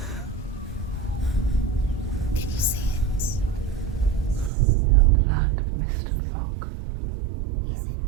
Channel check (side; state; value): left; drops out; at 4.5 s